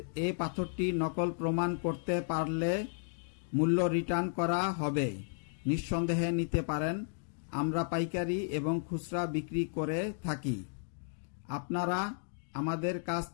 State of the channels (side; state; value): right; silent; digital silence